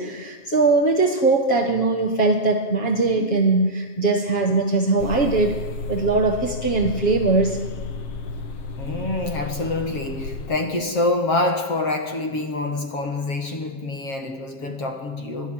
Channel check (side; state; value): right; late; 7.4 ms